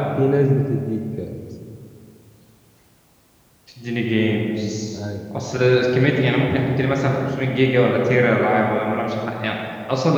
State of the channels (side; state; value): both; identical; correlation 1.00